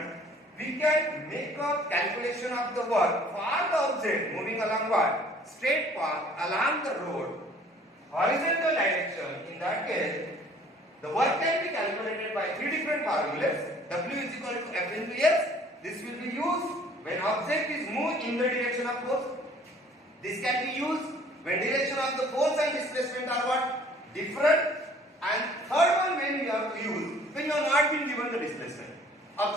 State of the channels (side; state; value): both; normal; correlation 0.54